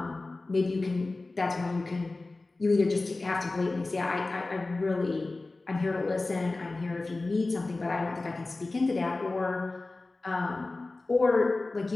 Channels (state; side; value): quieter; right; 3.2 dB